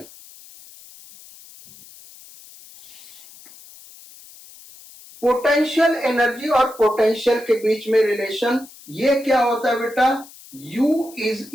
Potential energy और पोटेंशियल के बीच में रिलेशन ये क्या होता है बेटा, U is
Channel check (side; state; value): left; noise; hiss, 21 dB below the sound